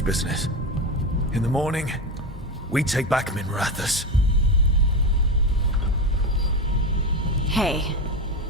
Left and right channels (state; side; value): normal; both; correlation 0.18